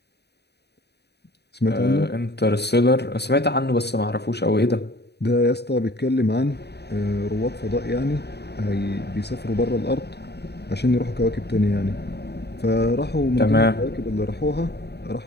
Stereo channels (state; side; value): late; right; 0.48 ms